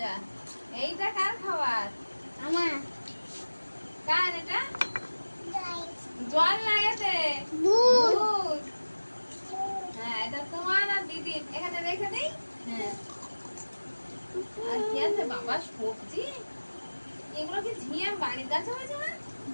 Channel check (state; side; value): inverted; both; correlation -1.00